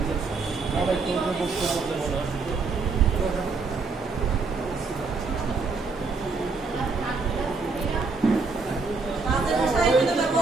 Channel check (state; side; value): quieter; left; 4.2 dB